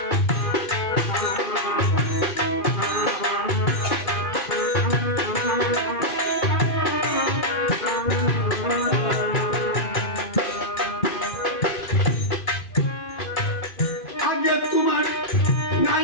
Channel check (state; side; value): late; right; 2.5 ms